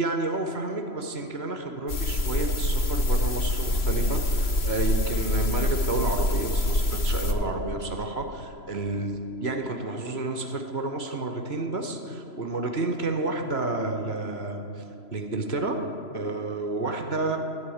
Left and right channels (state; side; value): late; right; 3.0 ms